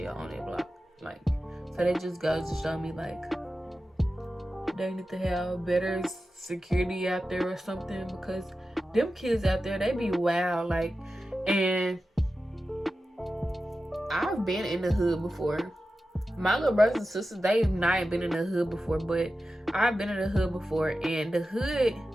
on that block. Like, so that just goes to show me, like, they need to have better security out there or something, because them kids out there, they be wild. Like, and I've been in the hood before. My little brothers and sisters, they've not been in the hood before, but I've been in the hood before, and the hood,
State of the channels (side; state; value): both; normal; correlation 0.93